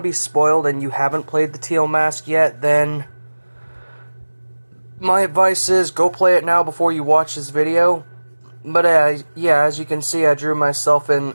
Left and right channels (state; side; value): inverted; both; correlation -1.00